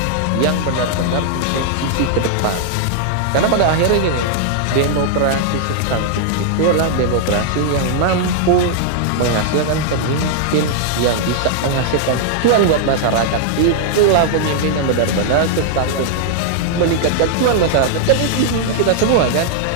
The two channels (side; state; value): both; different; correlation -0.01